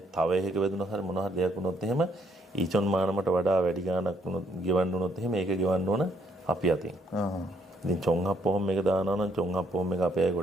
තව එකක වැදුනොත් හරි මොන හරි දෙයක් වුණොත් එහෙම ඊචොන් මානමට වඩා වැඩි ගාණක් වුණොත් ගෙවන්න වුණොත් එහෙම ඒක ගෙවන්න ඕන අපි අතින්. ඉතින් චොංහප්පොම් එක දානවා නම් චොංහප්පොම් එක අපේ අය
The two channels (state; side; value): normal; both; correlation 0.70